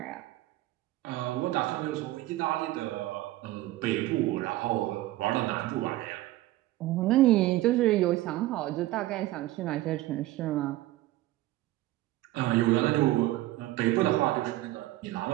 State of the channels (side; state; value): left; quieter; 16.5 dB